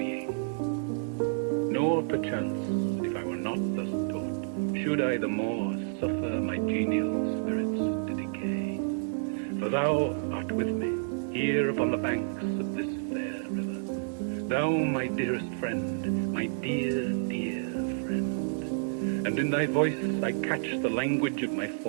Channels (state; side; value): silent; left; digital silence